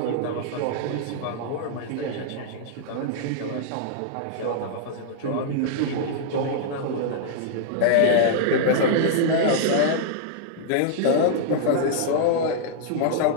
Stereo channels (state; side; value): different; both; correlation -0.02